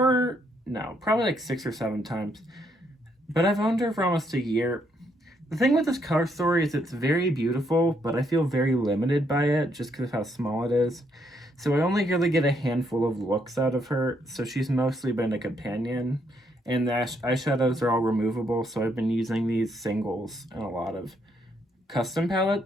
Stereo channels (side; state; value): both; normal; correlation 0.74